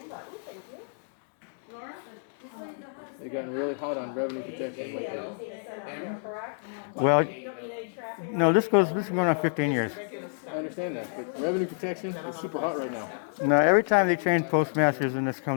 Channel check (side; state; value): right; silent; digital silence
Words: button, thank you. They've gotten really hot on revenue protection lately. Need to send out there, correct? Well, You don't need any traffic. no, this is going on 15 years. I understand that, but revenue protection is super hot right now. No, every time they change postmasters and this